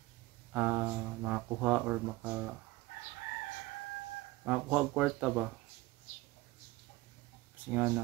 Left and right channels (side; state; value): left; quieter; 20.3 dB